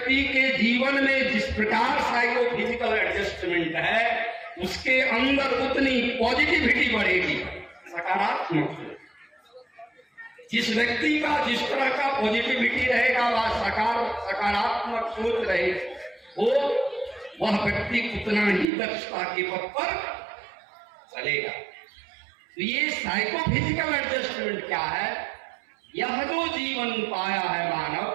के जीवन में जिस प्रकार साइको फिजिकल एडजस्टमेंट है, उसके अंदर उतनी पॉजिटिविटी बढ़ेगी, सकारात्मक। जिस व्यक्ति का जिस तरह का पॉजिटिविटी रहेगा, वह सकारात्मक सोच रहे, वह व्यक्ति उतना ही दक्षता के पथ पर चलेगा। तो ये साइकोफिजिकल एडजस्टमेंट क्या है? यह जो जीवन पाया है मानव,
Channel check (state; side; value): drops out; left; at 18.7 s